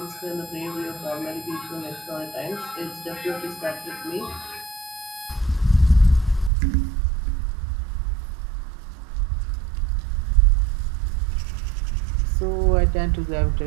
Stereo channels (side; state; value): left; drops out; at 6.5 s